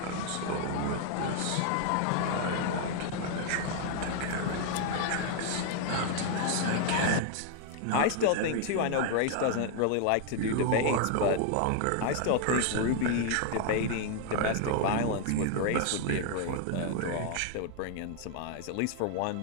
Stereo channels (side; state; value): both; different; correlation 0.00